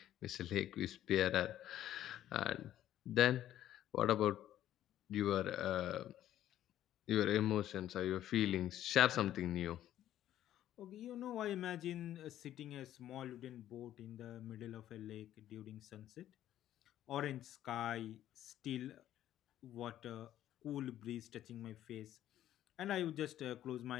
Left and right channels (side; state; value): right; quieter; 12.3 dB